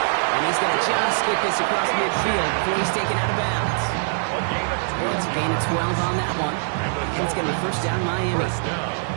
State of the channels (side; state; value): left; silent; digital silence